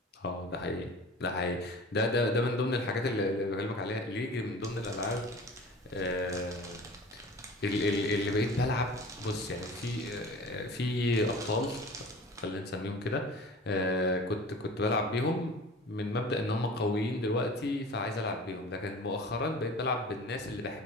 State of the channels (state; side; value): normal; both; correlation 0.40